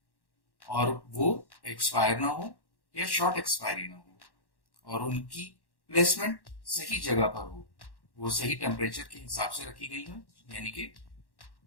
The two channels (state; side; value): late; right; 1.1 ms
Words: और वो एक्सपायर ना हो या शॉर्ट एक्सपायरी ना हो और उनकी प्लेसमेंट सही जगह पर हो, वो सही टेम्परेचर के हिसाब से रखी गई हो, यानी कि